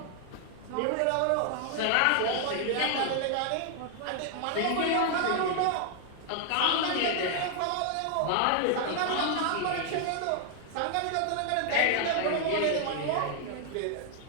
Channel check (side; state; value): both; different; correlation 0.00